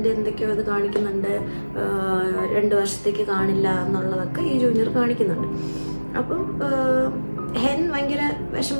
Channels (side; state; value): both; inverted; correlation -1.00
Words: എന്തൊക്കെയോ ഇത് കാണിക്കുന്നുണ്ട്, 2 വർഷത്തേക്ക് കാണില്ല എന്നുള്ളതൊക്കെ ഈ ജൂനിയർ കാണിക്കുന്നുണ്ട്. അപ്പം ഹെൻ ഭയങ്കര